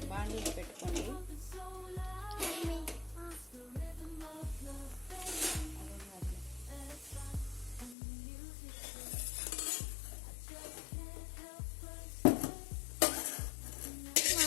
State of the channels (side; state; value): right; drops out; at 8.0 s